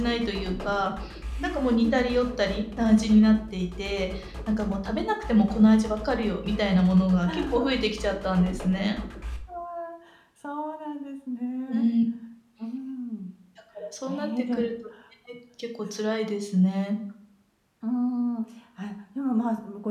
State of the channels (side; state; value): both; identical; correlation 1.00